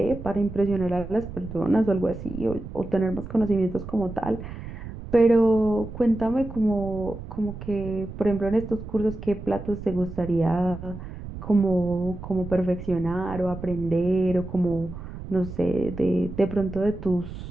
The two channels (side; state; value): right; noise; rumble, 11 dB below the sound